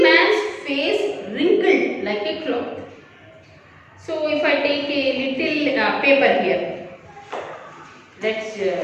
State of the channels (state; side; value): identical; both; correlation 1.00